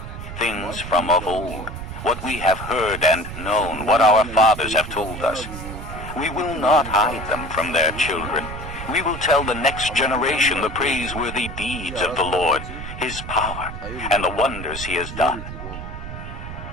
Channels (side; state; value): right; noise; rumble, 9 dB below the sound